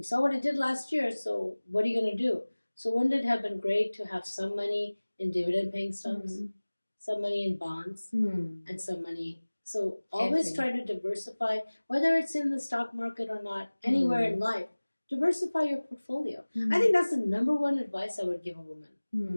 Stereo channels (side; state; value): both; inverted; correlation -1.00